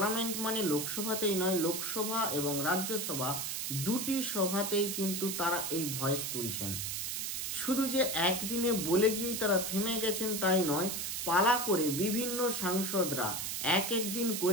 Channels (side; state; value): right; noise; hiss, 2 dB below the sound